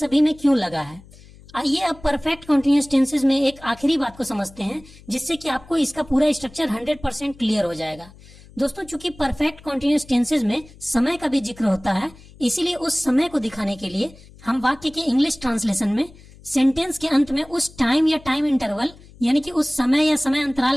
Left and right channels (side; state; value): left; noise; hum, 22 dB below the sound